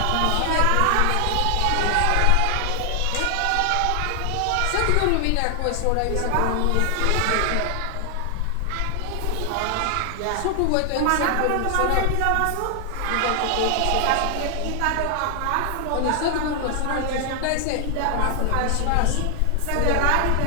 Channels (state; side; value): different; both; correlation 0.00